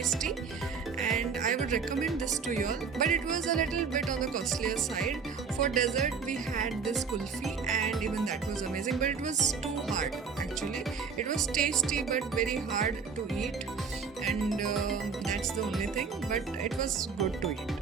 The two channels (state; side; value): quieter; left; 5.7 dB